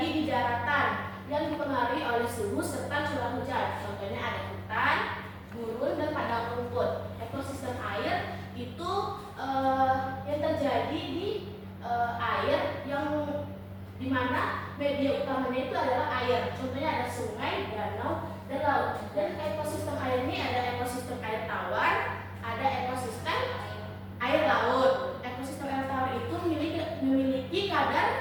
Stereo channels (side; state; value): both; identical; correlation 1.00